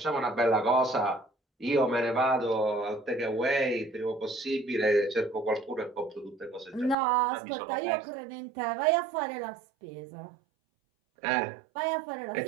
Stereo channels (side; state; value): left; drops out; at 7.0 s